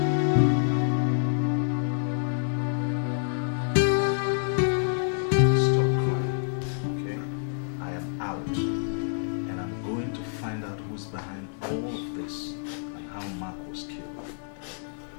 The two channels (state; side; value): silent; right; digital silence